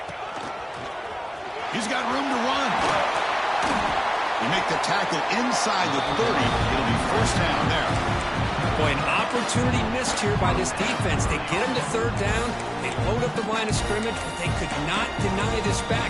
He's got room to run. They make the tackle inside the 30. It'll be 1st down there. Boy, an opportunity missed here by this defense. They get him to 3rd down. They load up the line of scrimmage, but they could not deny this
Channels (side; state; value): both; identical; correlation 1.00